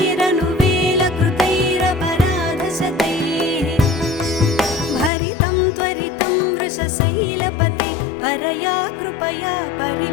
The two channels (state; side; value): drops out; right; at 5.1 s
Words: भरितं त्वरितं वृषशैलपते परया कृपया